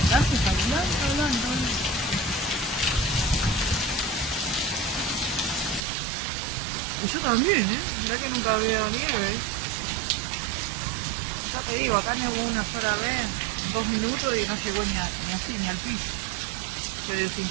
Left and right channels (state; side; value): drops out; left; at 5.9 s